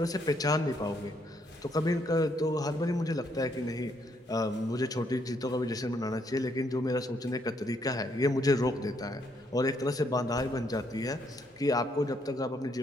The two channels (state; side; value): normal; both; correlation 0.72